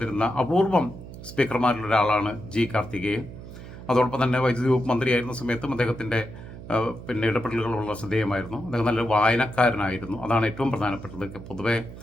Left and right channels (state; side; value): noise; right; hum, 14 dB below the sound